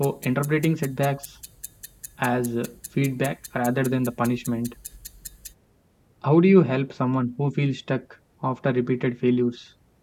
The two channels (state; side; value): identical; both; correlation 1.00